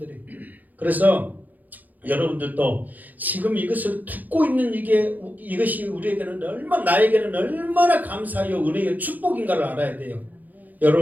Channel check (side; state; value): left; late; 0.082 ms